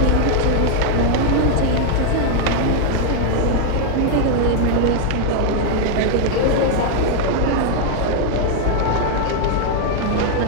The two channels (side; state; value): both; different; correlation 0.00